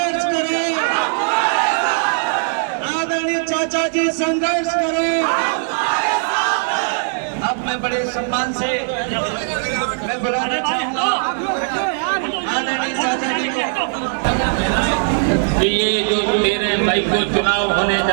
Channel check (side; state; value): left; silent; 67 dB below the other